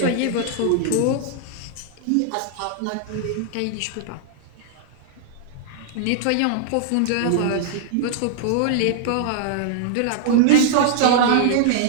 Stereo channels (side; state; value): both; different; correlation -0.01